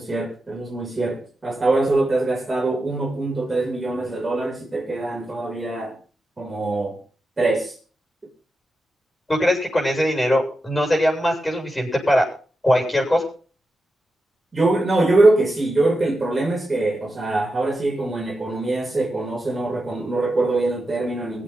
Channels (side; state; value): both; normal; correlation 0.89